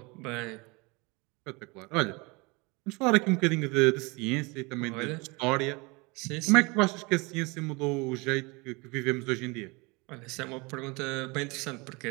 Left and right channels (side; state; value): left; quieter; 26.8 dB